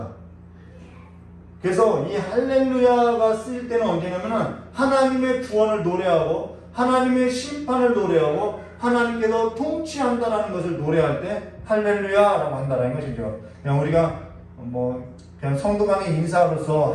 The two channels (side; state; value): both; identical; correlation 1.00